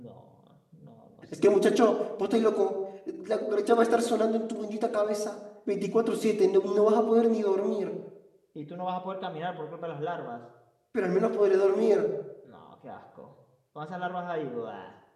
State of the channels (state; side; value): identical; both; correlation 1.00